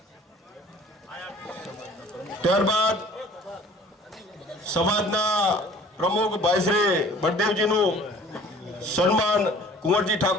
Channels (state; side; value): normal; both; correlation 0.50